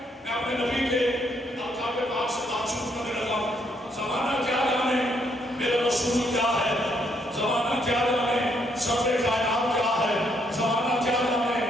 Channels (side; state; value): both; normal; correlation 0.72